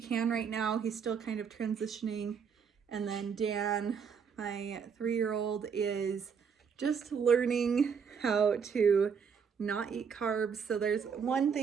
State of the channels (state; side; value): quieter; left; 6.5 dB